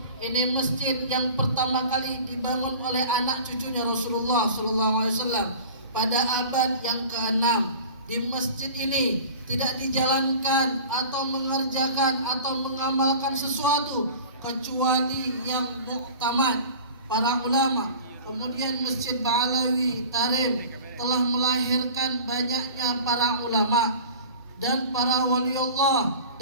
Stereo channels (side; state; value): both; inverted; correlation -0.40